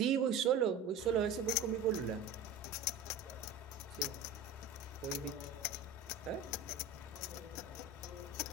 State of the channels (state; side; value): quieter; left; 3.8 dB